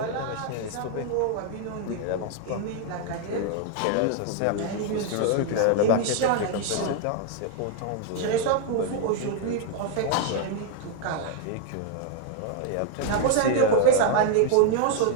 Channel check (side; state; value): both; different; correlation 0.00